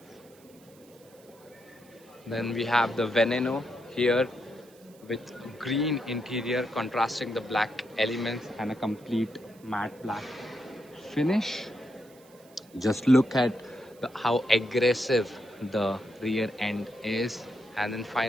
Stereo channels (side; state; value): right; noise; hiss, 27 dB below the sound